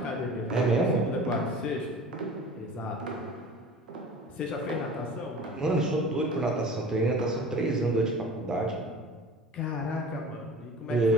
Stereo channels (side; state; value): both; normal; correlation 0.41